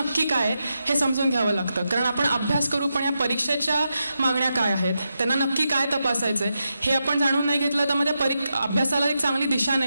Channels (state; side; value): inverted; both; correlation -0.87